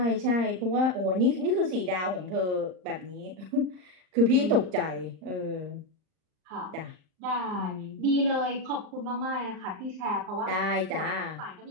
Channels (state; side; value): late; left; 39 ms